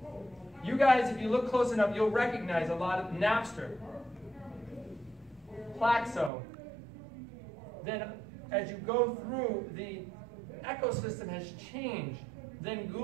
You guys, if you look close enough, you'll recognize a lot of Napster, Plaxo. Then as you go through, the ecosystem has changed. Then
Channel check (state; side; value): drops out; left; at 6.3 s